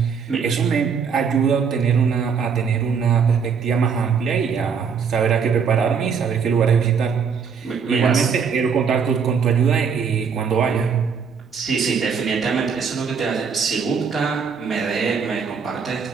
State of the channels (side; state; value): left; quieter; 6.2 dB